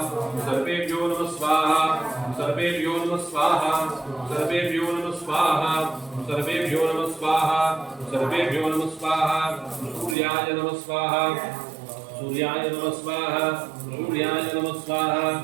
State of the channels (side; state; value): left; drops out; at 10.2 s